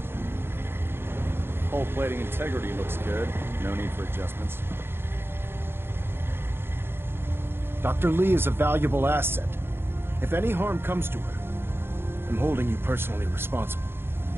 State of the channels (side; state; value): left; late; 0.11 ms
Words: Hull plating integrity looks good. No need for adjustments. Dr. Lee is a valuable asset. If any harm comes to her, I'm holding you personally responsible.